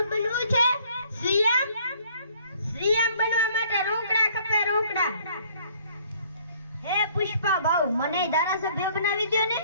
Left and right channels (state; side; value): inverted; both; correlation -0.60